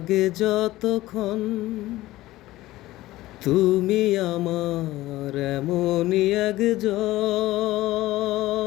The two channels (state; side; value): quieter; right; 16.9 dB